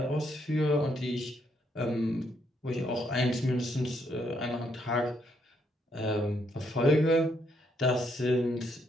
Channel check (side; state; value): both; normal; correlation 0.74